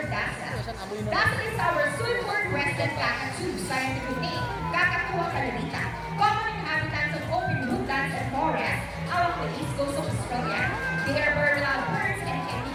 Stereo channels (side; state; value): both; identical; correlation 1.00